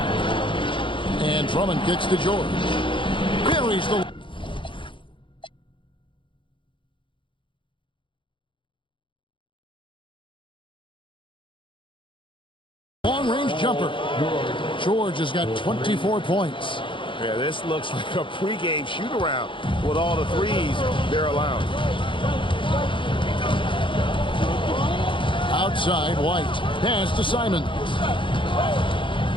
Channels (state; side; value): late; right; 0.24 ms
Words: And Drummond kicks to George. Buries the long-range jumper. George has got 24 points. Yeah, this looks like a pregame shoot-around with all the threes they're allowing. Outside, White. Pass to Simons.